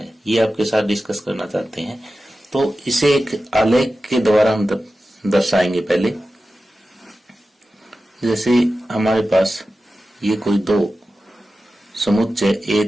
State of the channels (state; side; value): normal; both; correlation 0.93